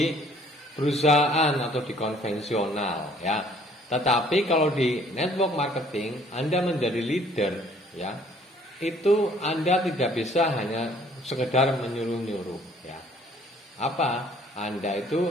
perusahaan atau di konvensional ya. Tetapi kalau di network marketing Anda menjadi leader ya, itu Anda tidak bisa hanya sekedar menyuruh-nyuruh ya. Apa? Anda itu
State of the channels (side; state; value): both; normal; correlation 0.59